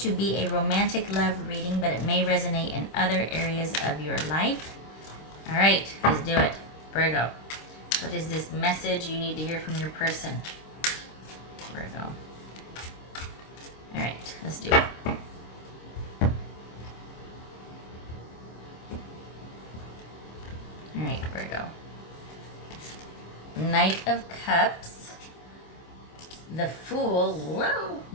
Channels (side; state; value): right; late; 26 ms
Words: be a romantic love reading, but it may resonate in other areas of your life. All right, let's do it. Virgo, what is this message you need to hear from your person? Virgo. All right, let's do it. All right, Virgo. Knight of Cups. The Fool. Whoa.